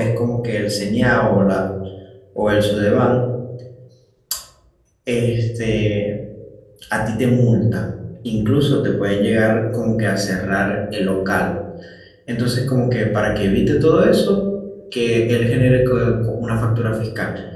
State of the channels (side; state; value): both; identical; correlation 1.00